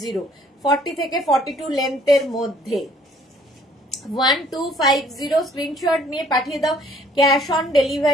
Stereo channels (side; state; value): both; normal; correlation 0.59